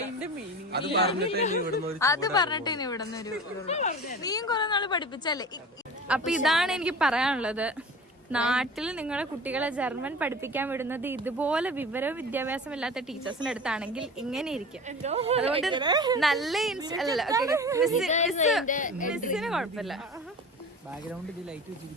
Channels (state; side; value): normal; both; correlation 0.36